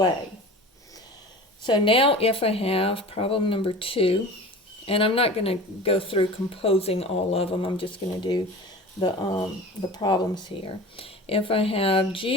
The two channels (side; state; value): both; normal; correlation 0.37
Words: So now if I have problem number 2, and I'm not going to go through composing all of them, I'm just going to do the problems here. If I have